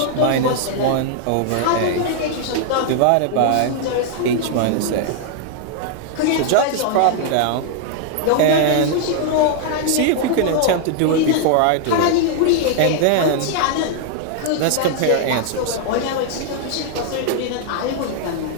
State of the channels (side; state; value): both; different; correlation 0.00